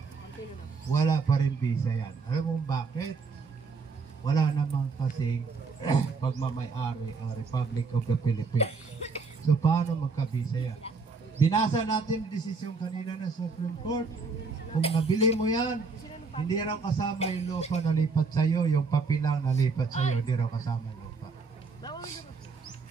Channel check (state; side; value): quieter; left; 4.5 dB